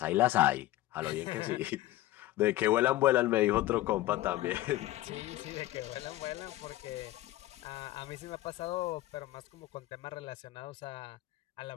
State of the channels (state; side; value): quieter; right; 16.2 dB